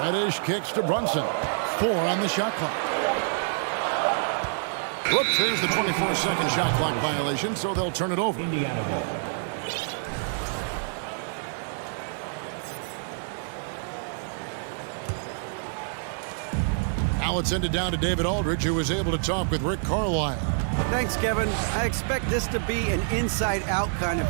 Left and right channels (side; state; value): left; silent; digital silence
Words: Reddish kicks to Brunson. 4 on the shot clock. Whoops, there's the 24-second shot clock violation, so they'll turn it over. Indiana ball. Now it's ended down to David Aldridge, who was able to talk with Rick Carlisle. Thanks, Kevin. I expect this to be an inside-out kind